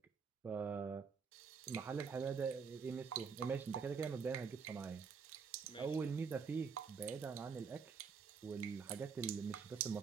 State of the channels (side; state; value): left; quieter; 5.7 dB